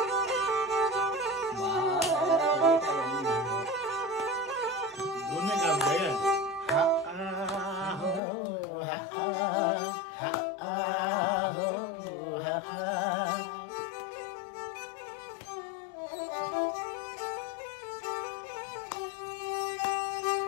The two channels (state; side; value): drops out; right; at 8.2 s